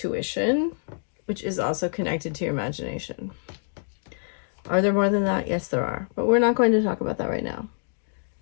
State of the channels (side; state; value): right; silent; digital silence